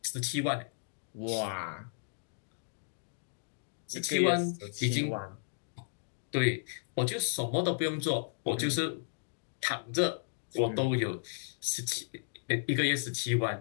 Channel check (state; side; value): silent; right; digital silence